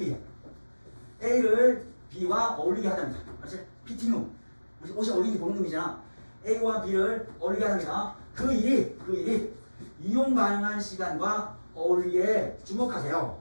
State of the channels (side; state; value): both; inverted; correlation -1.00